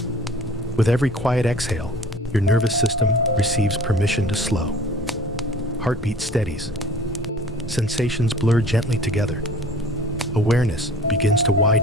With every quiet exhale, your nervous system receives permission to slow. Heartbeat steadies. Sensations blur gently together. Awareness begins to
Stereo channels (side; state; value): both; normal; correlation 0.47